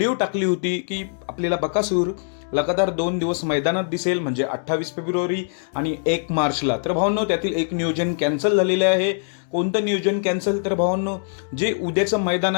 टाकली होती की आपल्याला बकासूर लगातार 2 दिवस मैदानात दिसेल, म्हणजे 28 फेब्रुवारी आणि 1 मार्चला. तर भावांनो, त्यातील एक नियोजन कॅन्सल झालेलं आहे. कोणतं नियोजन कॅन्सल? तर भावांनो, जे उद्याचं मैदान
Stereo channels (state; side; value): silent; right; digital silence